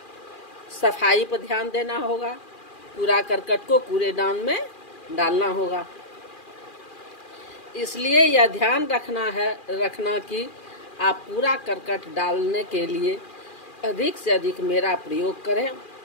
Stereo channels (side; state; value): right; late; 2.4 ms